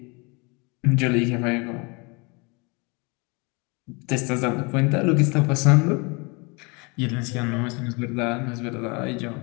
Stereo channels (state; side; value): quieter; right; 29.7 dB